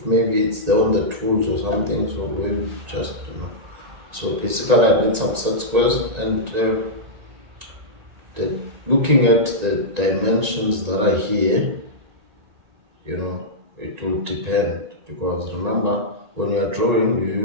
maybe it's there on the tools or something, so we just, so basically I need some set squares, and looking at the dimensions that are here, it will depend, because remember, when you are drawing,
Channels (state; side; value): late; left; 1.9 ms